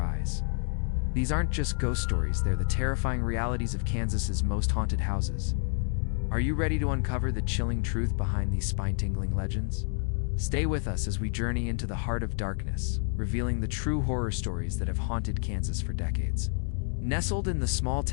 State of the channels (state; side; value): silent; right; 59 dB below the other